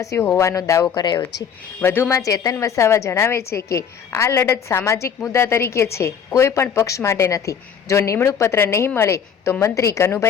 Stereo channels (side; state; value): right; quieter; 7.5 dB